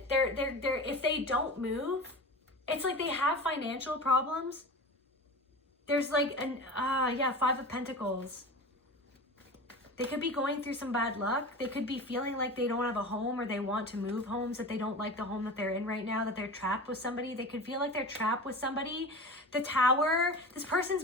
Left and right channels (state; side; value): normal; both; correlation 0.32